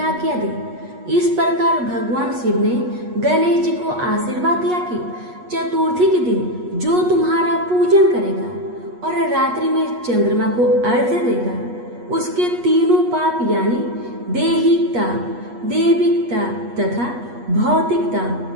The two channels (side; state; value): left; late; 8.3 ms